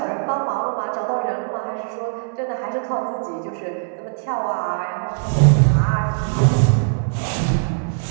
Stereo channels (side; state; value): left; silent; 65 dB below the other